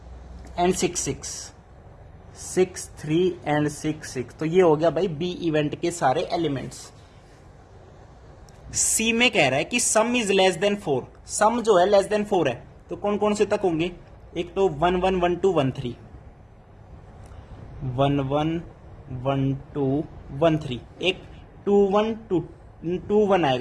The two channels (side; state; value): both; identical; correlation 1.00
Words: एंड 6 6, 6 3 एंड 6 6. तो ये हो गया भाई बी इवेंट के सारे एलिमेंट्स. सी में कह रहा है कि सम इज लेस देन 4. सम जो है लेस देन 4 है, तो कौन कौन से तक होंगे? एक तो 1 1 1 2 1 3, 1 1 1 2 1 3. एक 2 1 2 1